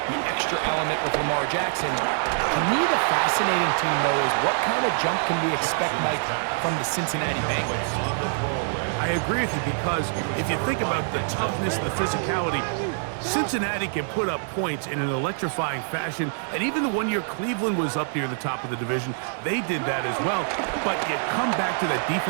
extra element with Lamar Jackson. To me, the fascinating team, though, is what kind of jump can we expect, Mike, from the Cincinnati Bengals? I agree with you because if you think about the toughness and the physicality, Cincinnati can put up points in an electrifying fashion, and even the 1 year Cleveland was up near the top of the division, they did that as well. But you come back to that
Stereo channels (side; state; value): left; silent; digital silence